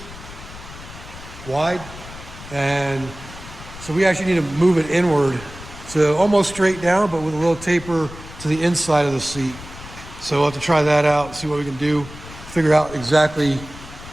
wide. And so we actually need to move it inward. So almost straight down, but with a little taper to the inside of the seat. So we'll have to try that out, see what we can do, figure out exactly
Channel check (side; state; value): left; noise; rumble, 15 dB below the sound